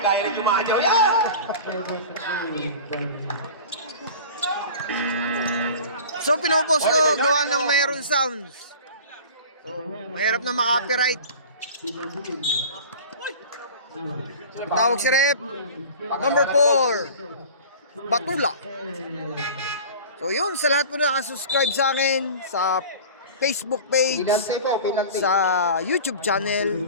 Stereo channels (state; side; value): inverted; both; correlation -0.39